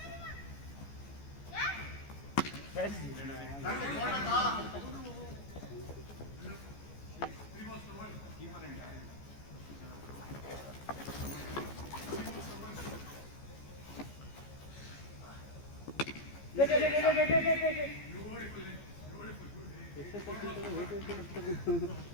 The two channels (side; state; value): right; late; 14 ms